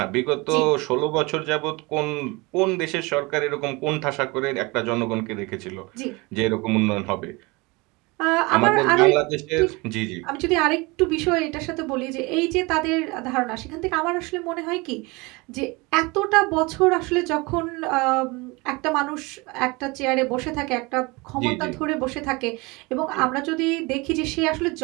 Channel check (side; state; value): left; quieter; 25.3 dB